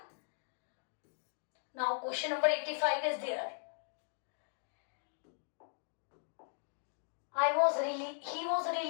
Now question number 85 is there. He was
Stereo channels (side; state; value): right; silent; digital silence